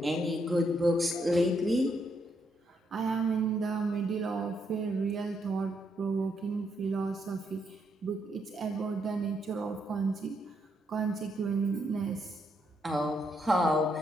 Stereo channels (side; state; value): both; normal; correlation 0.77